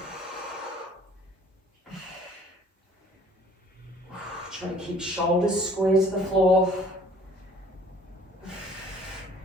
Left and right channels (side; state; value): both; normal; correlation 0.54